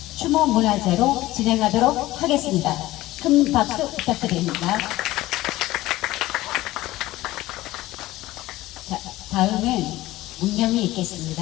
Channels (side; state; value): right; quieter; 17.1 dB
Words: 추모 문화제로 진행하도록 하겠습니다. 큰 박수 부탁드립니다. 자, 다음은 문념이